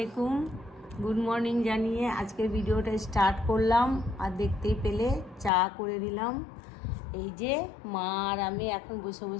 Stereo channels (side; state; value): right; drops out; at 5.5 s